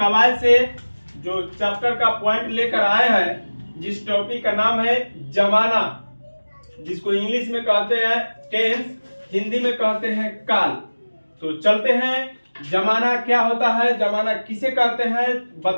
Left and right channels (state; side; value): inverted; both; correlation -1.00